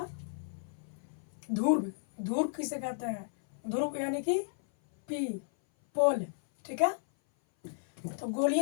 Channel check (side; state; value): right; silent; 56 dB below the other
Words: ध्रुव, ध्रुव किसे कहते हैं? ध्रुव यानी कि पी, पोल। ठीक है, तो